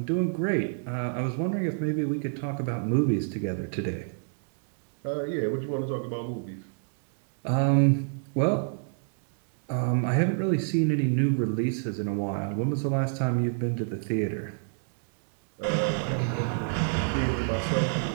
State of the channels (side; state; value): left; silent; digital silence